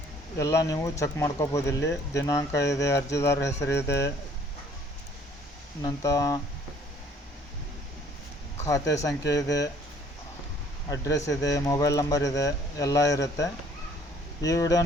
ಎಲ್ಲ ನೀವು ಚೆಕ್ ಮಾಡ್ಕೋಬೋದು. ಇಲ್ಲಿ ದಿನಾಂಕ ಇದೆ, ಅರ್ಜಿದಾರರ ಹೆಸರಿದೆ, ನಂತರ ಖಾತೆ ಸಂಖ್ಯೆ ಇದೆ, ಅಡ್ರೆಸ್ ಇದೆ, ಮೊಬೈಲ್ ನಂಬರ್ ಇದೆ, ಎಲ್ಲ ಇರುತ್ತೆ. ಈ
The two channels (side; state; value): both; normal; correlation 0.58